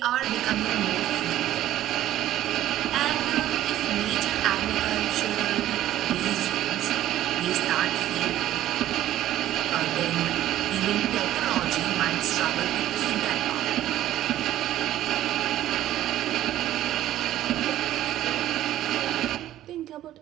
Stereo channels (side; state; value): left; quieter; 13.3 dB